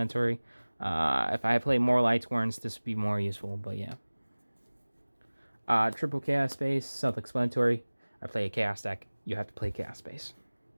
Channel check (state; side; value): inverted; both; correlation -1.00